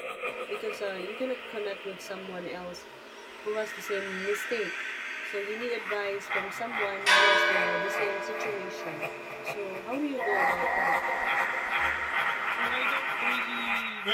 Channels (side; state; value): both; identical; correlation 1.00